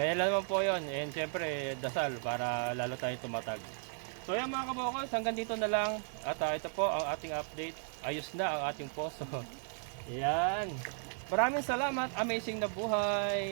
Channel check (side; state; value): left; silent; 54 dB below the other